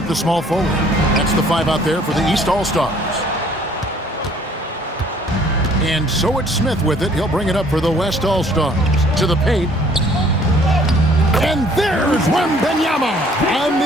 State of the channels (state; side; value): normal; both; correlation 0.58